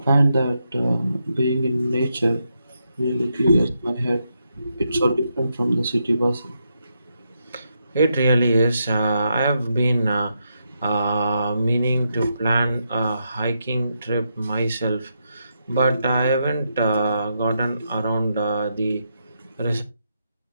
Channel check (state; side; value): inverted; both; correlation -0.82